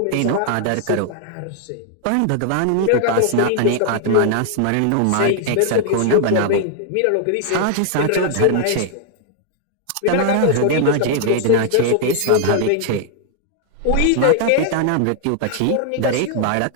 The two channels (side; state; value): both; different; correlation 0.00